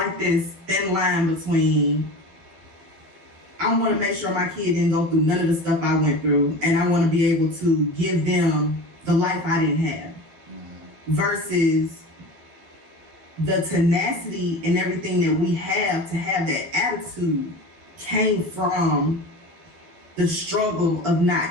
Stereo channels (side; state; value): left; late; 12 ms